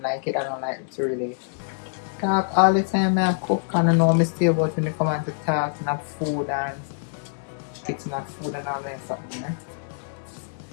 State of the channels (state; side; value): silent; right; digital silence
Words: like it. I don't like to really talk all the time. I cook and I know mistake about when they come out to talk and have food and fixing up food and all that something.